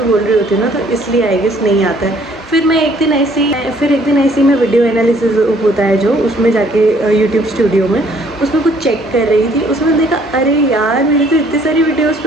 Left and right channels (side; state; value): both; normal; correlation 0.61